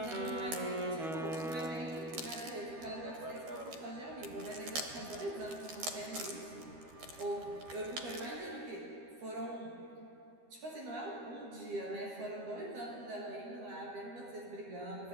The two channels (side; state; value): left; late; 13 ms